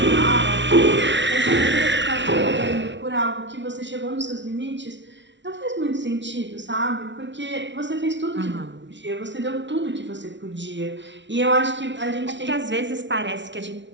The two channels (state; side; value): late; left; 0.53 ms